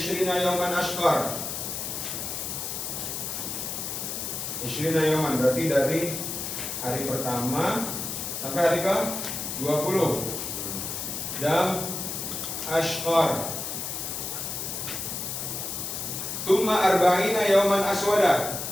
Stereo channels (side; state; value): left; noise; hiss, 4 dB below the sound